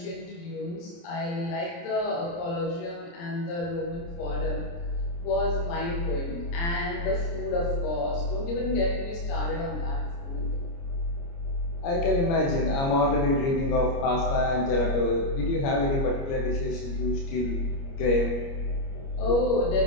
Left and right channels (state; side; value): late; right; 29 ms